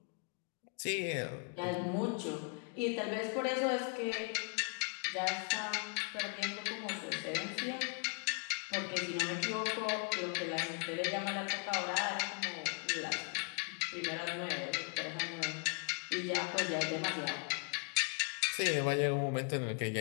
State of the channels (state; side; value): quieter; right; 35.4 dB